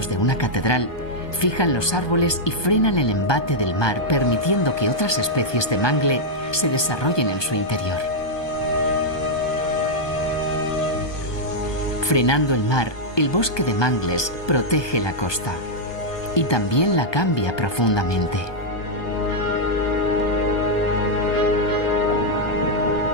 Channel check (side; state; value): right; late; 1.2 ms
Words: de una catedral, fijan los árboles y frenan el embate del mar, permitiendo que otras especies de mangle se desarrollen en su interior. Frenando el mar, el bosque de mangles protege la costa y también la cambia profundamente.